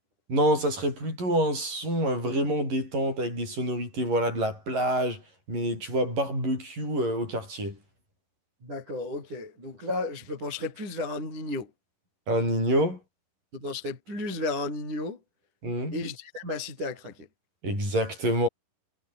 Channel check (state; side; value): late; left; 11 ms